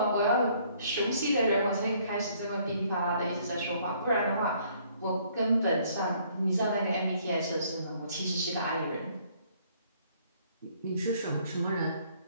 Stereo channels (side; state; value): both; inverted; correlation -0.63